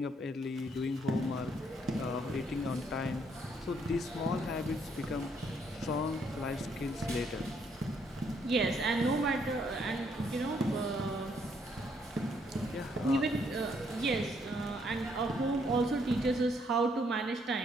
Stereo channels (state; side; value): normal; both; correlation 0.70